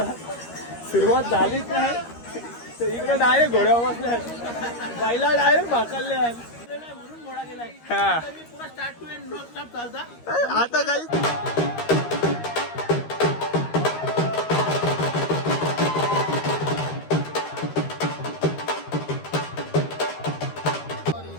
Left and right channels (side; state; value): right; late; 13 ms